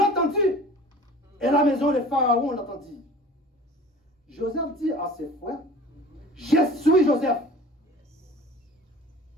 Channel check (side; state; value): both; normal; correlation 0.43